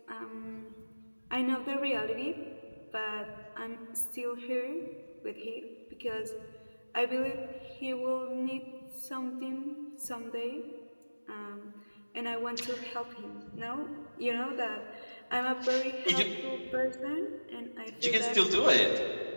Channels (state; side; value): inverted; both; correlation -1.00